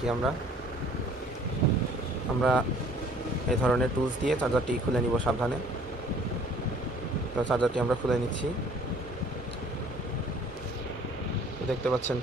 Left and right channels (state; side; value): normal; both; correlation 0.55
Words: আমরা এই ধরনের টুলস দিয়ে চার্জারটি খুলে নিব সাবধানে। তো চার্জারটি আমরা খুলে নিচ্ছি। দেখতে পাচ্ছেন